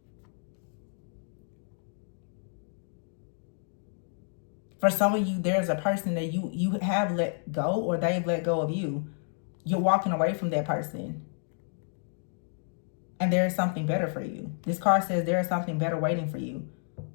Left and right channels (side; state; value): right; silent; digital silence